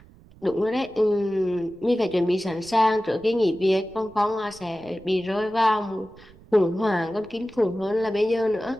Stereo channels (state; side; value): noise; right; rumble, 24 dB below the sound